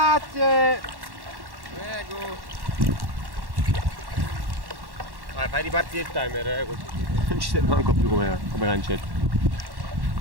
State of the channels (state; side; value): late; left; 1.1 ms